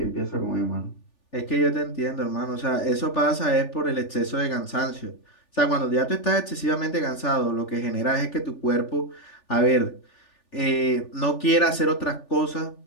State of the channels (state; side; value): late; right; 3.4 ms